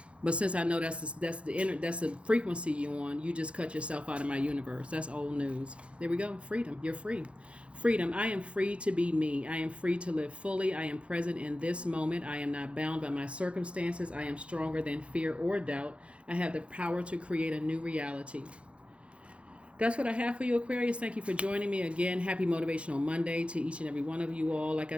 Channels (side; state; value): left; late; 0.060 ms